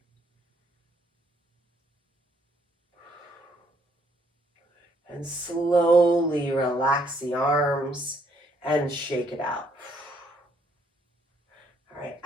And slowly relax the arms and shake it out. All right,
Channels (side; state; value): both; normal; correlation 0.69